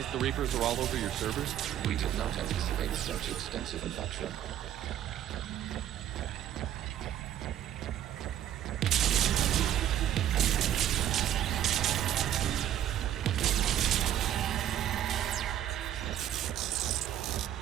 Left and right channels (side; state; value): left; quieter; 11.2 dB